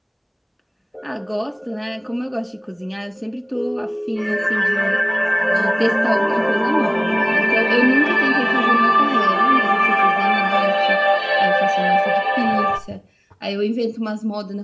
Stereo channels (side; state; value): both; identical; correlation 1.00